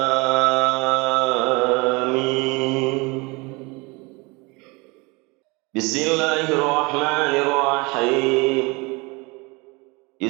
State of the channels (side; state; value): left; quieter; 26.5 dB